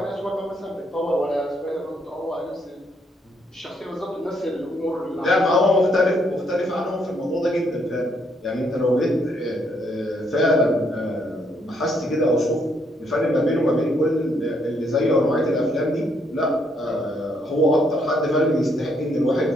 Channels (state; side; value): normal; both; correlation 0.72